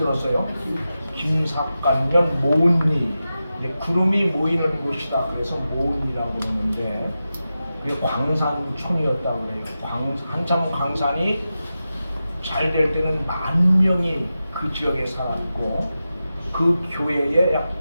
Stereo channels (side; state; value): both; inverted; correlation -0.92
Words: 김삿간면 모은리, 구름이 모이는 곳이다. 그래서 모은리라고 그러는데 그게 광산촌이었다고 해요. 한참 광산이 잘 될 때는 10,000명이 그 지역에 살았고 그 교회에 약